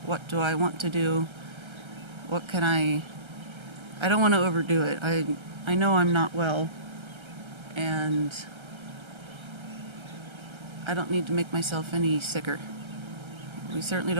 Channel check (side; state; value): left; late; 1.3 ms